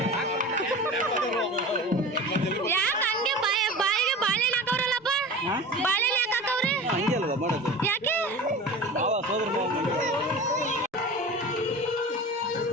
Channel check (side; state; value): both; normal; correlation 0.34